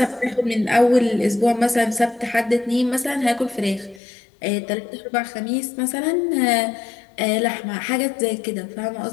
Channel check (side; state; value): right; drops out; at 4.0 s